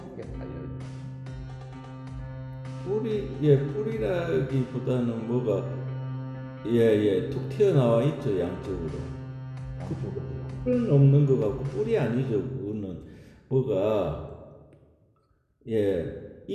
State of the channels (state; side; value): identical; both; correlation 1.00